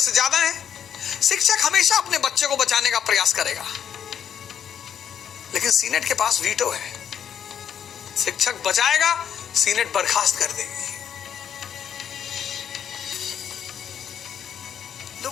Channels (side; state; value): right; quieter; 8.8 dB